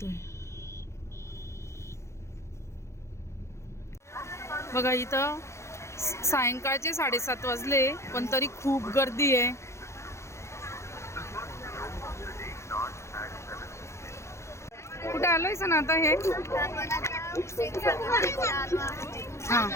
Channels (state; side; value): late; right; 0.14 ms